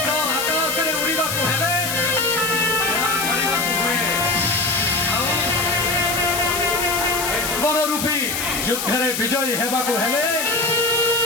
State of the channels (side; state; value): left; noise; hiss, 3 dB below the sound